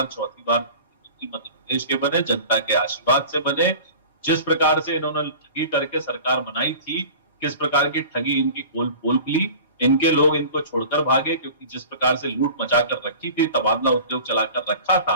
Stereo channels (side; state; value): both; inverted; correlation -0.39